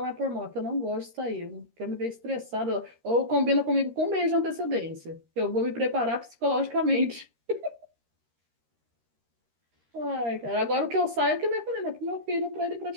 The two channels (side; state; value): left; late; 13 ms